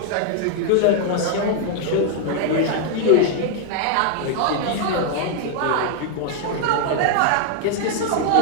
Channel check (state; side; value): different; both; correlation 0.00